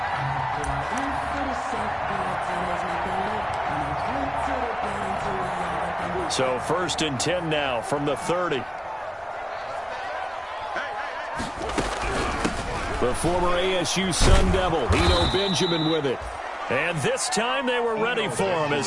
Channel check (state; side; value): identical; both; correlation 1.00